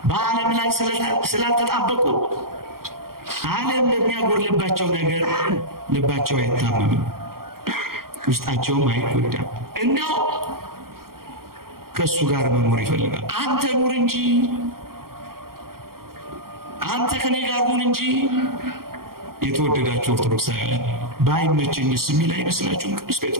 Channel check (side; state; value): left; late; 0.93 ms